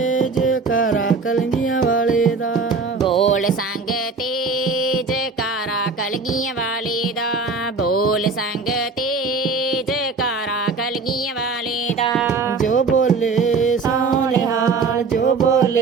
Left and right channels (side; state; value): left; quieter; 4.3 dB